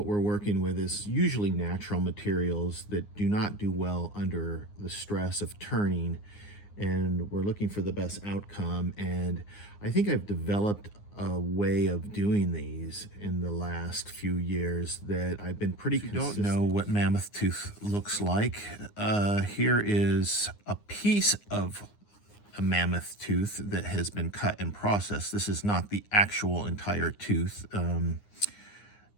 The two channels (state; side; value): late; right; 9.7 ms